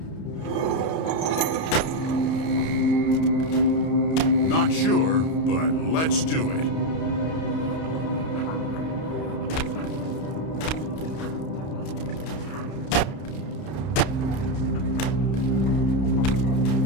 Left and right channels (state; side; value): late; right; 31 ms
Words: Not sure, but let's do it.